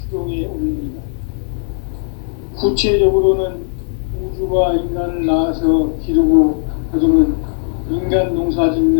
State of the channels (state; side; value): silent; right; 59 dB below the other